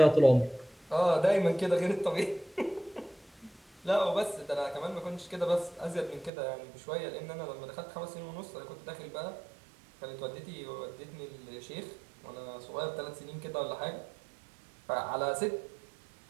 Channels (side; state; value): left; drops out; at 6.3 s